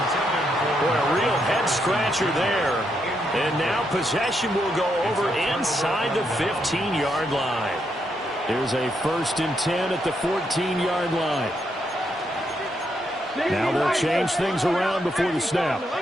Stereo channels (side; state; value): both; normal; correlation 0.79